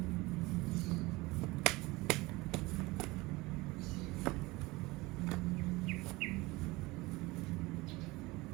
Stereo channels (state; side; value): quieter; left; 21.9 dB